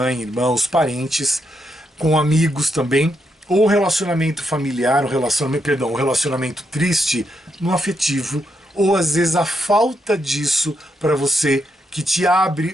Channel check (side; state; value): both; normal; correlation 0.80